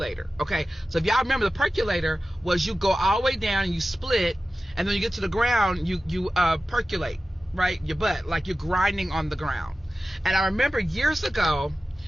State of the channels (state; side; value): normal; both; correlation 0.95